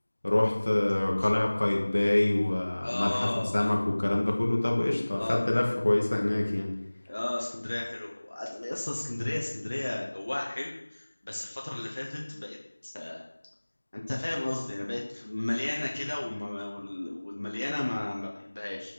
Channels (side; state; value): both; inverted; correlation -1.00